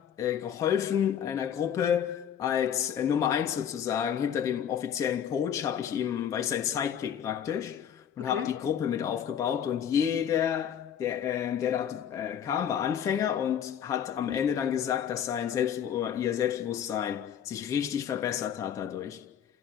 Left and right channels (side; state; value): right; quieter; 8.9 dB